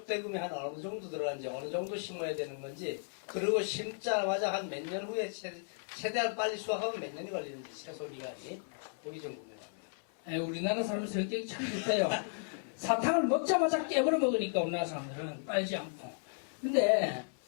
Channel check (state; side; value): silent; right; 55 dB below the other